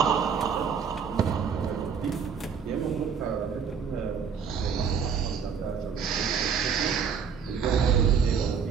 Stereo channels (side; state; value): left; quieter; 6.6 dB